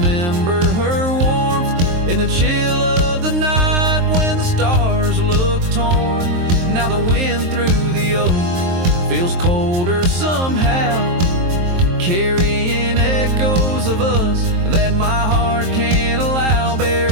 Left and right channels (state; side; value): late; left; 23 ms